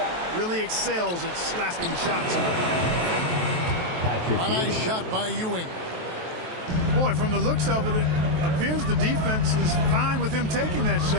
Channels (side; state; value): left; late; 23 ms